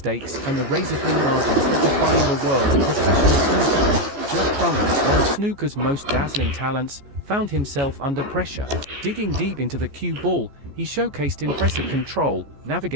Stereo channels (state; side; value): late; left; 15 ms